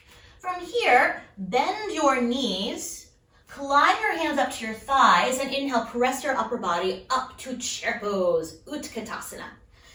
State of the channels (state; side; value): identical; both; correlation 1.00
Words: From here, bend your knees, climb your hands up to your thighs, and inhale, press your upper body up to chair pose, Utkatasana.